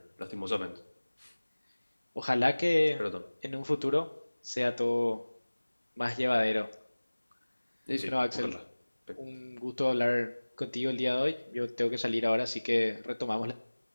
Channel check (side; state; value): both; inverted; correlation -1.00